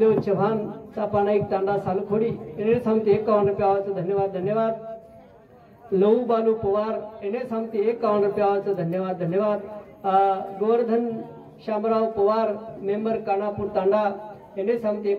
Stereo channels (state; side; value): identical; both; correlation 1.00